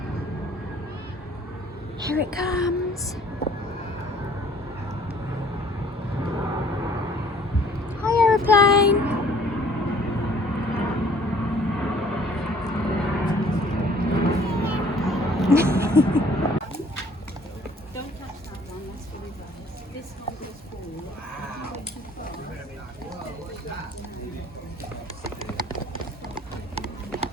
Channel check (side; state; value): both; normal; correlation 0.56